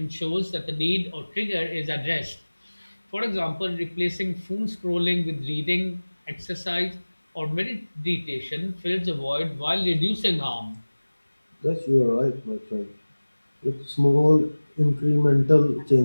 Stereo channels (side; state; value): both; inverted; correlation -1.00